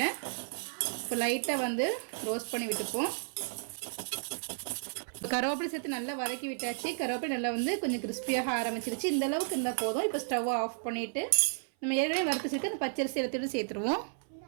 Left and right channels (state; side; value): silent; left; 56 dB below the other